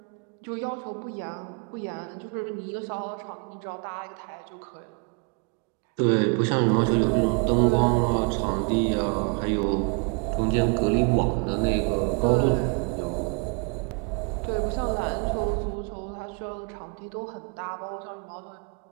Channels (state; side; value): quieter; left; 34.6 dB